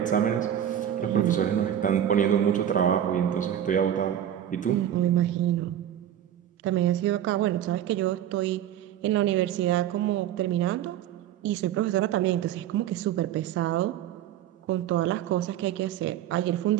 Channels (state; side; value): quieter; left; 10.7 dB